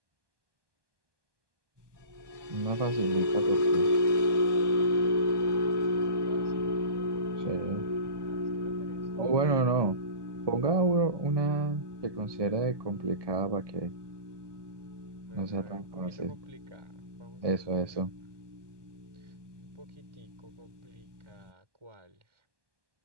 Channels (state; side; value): late; left; 1.2 ms